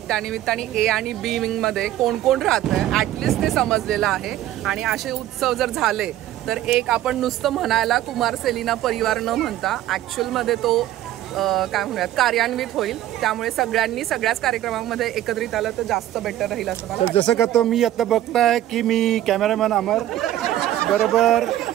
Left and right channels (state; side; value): quieter; left; 13.4 dB